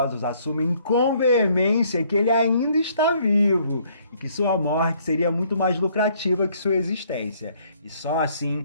assumem com veemência que ele ainda está vivo e que sua morte seria muito mais lucrativa que sua existência, e só assim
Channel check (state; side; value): inverted; both; correlation -0.64